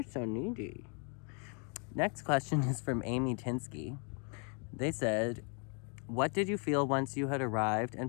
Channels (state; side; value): quieter; right; 38.4 dB